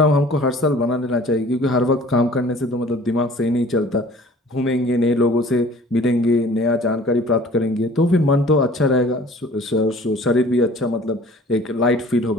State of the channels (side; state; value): both; normal; correlation 0.49